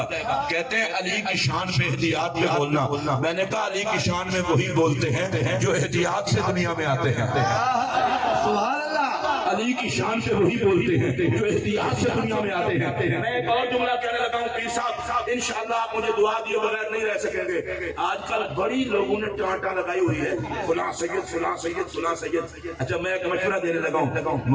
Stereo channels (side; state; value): both; identical; correlation 1.00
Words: کہتے ہیں علی کی شان میں احتیاط میں بولنا. میں نے کہا علی کی شان میں وہی بولتے ہیں جو احتیاط سے دنیا میں آتے ہیں. سبحان اللہ. علی کی شان سے وہی بولتے ہیں جو احتیاط سے دنیا میں آتے ہیں. میں ایک اور جملہ کہنے لگا ہوں، پیر صاحب انشاءاللہ آپ مجھے دعا دیے بغیر نہیں رہ سکیں گے. آج کل بڑی لوگوں نے ٹانٹا لگائی ہوئی ہے، فلاں سید فلاں سید فلاں سید. اچھا میں ایک مشورہ دینے لگا ہوں،